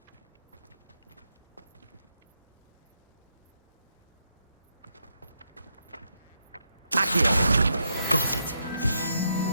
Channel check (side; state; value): both; inverted; correlation -0.80